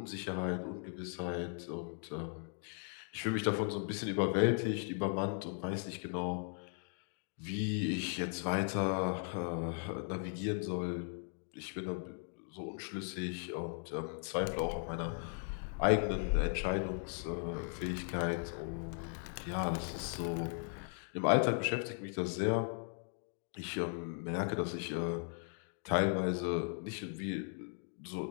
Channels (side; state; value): right; silent; 53 dB below the other